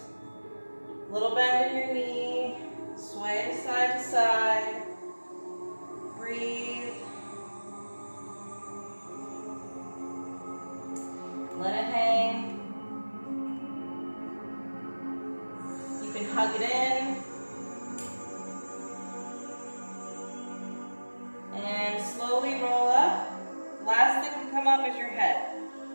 little bend in your knee, sway side to side. Breathe. Let it hang. You can hug it in. And slowly roll up. Last thing to come up is your head.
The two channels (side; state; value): both; inverted; correlation -1.00